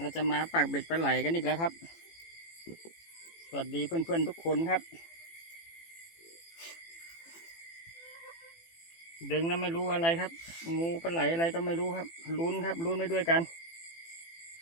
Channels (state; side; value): late; right; 18 ms